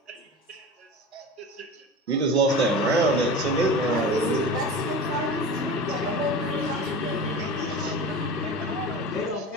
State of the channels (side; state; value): both; normal; correlation 0.32